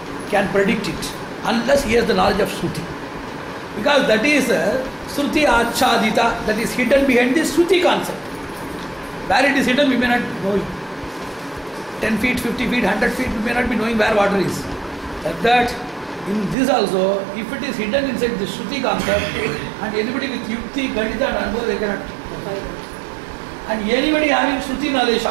can predict it unless he has the knowledge of Shruti. Because that is Shruti Achadita, that is hidden behind the Shruti concept. Where it is hidden, we may not know it. 10 feet, 50 feet, 100 feet, we may not be knowing where water is. Like that, in this also, if it is hidden inside the Shruti concept, and anybody with Yukti, Ganita and Anubhava, they cannot. And anybody having Shruti knowledge,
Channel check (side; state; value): left; drops out; at 16.6 s